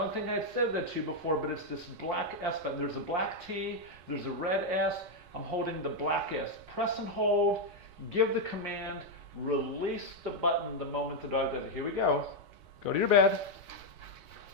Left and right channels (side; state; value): left; late; 4.3 ms